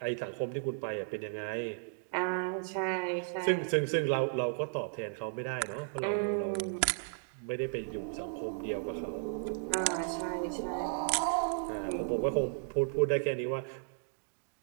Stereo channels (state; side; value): silent; left; digital silence